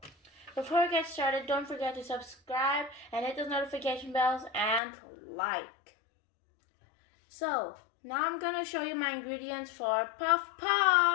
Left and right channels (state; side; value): drops out; right; at 4.8 s